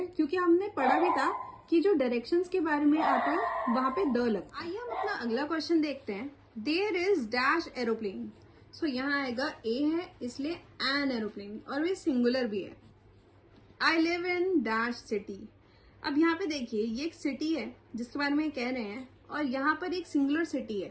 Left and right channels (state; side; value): identical; both; correlation 1.00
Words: क्योंकि हमने पढ़ा भी था कि जो डायरेक्शंस के बारे में आता है वहां पे द लगता है। आइए हम अपना अगला क्वेश्चन देखते हैं। देयर इज डैश एरोप्लेन, सो यहाँ आएगा ए है इसलिए एन एरोप्लेन, और वे सिंगुलर भी है। I live in dash city, अब यहाँ पे देखिए ये एक सिटी है जिसके बारे में कह रहे हैं, और यहाँ पर एक सिंगुलर सिटी